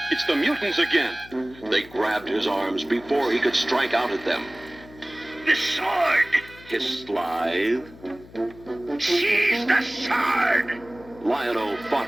It's the mutants again. They grabbed his arms before he could strike out at them. The sword! Hissed Slythe. Seize the sword! Lionel fought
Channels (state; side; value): noise; left; hum, 21 dB below the sound